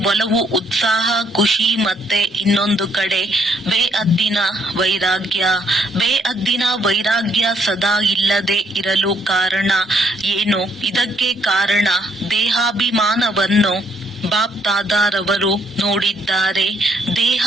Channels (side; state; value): both; normal; correlation 0.70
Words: ಒಲವು ಉತ್ಸಾಹ ಖುಷಿ, ಮತ್ತೆ ಇನ್ನೊಂದು ಕಡೆ ಬೇಹದ್ದಿನ ವೈರಾಗ್ಯ ಸದಾ ಇಲ್ಲದೆ ಇರಲು ಕಾರಣ ಏನು? ಇದಕ್ಕೆ ಕಾರಣ ದೇಹಾಭಿಮಾನವನ್ನು ಬಾಪ್ ದಾದಾರವರು ನೋಡಿದ್ದಾರೆ. ದೇಹ